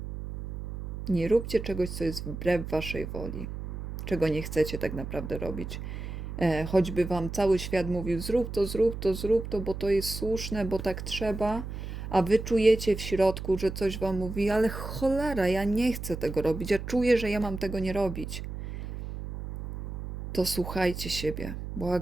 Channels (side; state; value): right; noise; hum, 7 dB below the sound